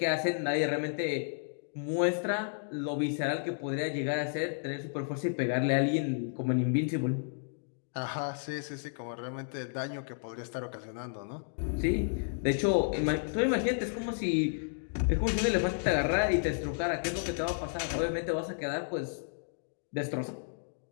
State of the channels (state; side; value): silent; right; digital silence